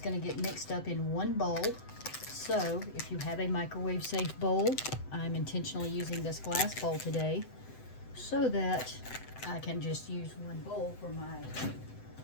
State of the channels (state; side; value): late; right; 7.9 ms